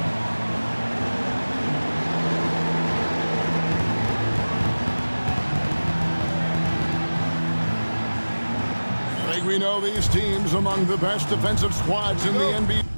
I think we know these teams among the best defensive squads in the NBA.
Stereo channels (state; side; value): inverted; both; correlation -1.00